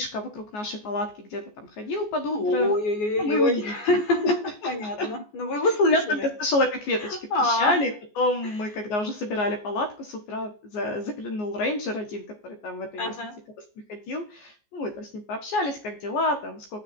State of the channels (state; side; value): late; right; 14 ms